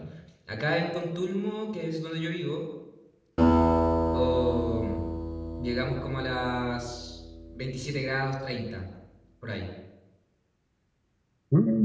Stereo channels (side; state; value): both; identical; correlation 1.00